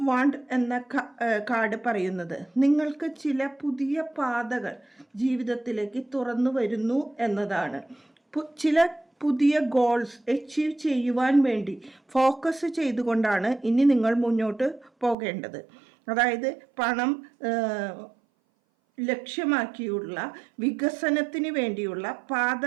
വാണ്ട് എന്ന കാർഡ് പറയുന്നത് നിങ്ങൾക്ക് ചില പുതിയ പാതകൾ ജീവിതത്തിലേക്ക് തുറന്നു വരുന്നു എന്നതാണ്. ചില പുതിയ ഗോൾസ് അച്ചീവ് ചെയ്യുവാൻ വേണ്ടി ഫോക്കസ് ചെയ്തുകൊണ്ടാണ് ഇനി നിങ്ങൾ മുന്നോട്ട് പോകേണ്ടത്. അതായത് പണം ലക്ഷ്യമാക്കിയുള്ള വികസനത്തിന് വേണ്ടിയുള്ള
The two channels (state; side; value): drops out; left; at 15.2 s